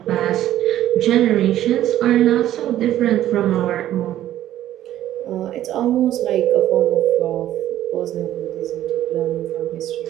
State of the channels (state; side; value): quieter; left; 12.7 dB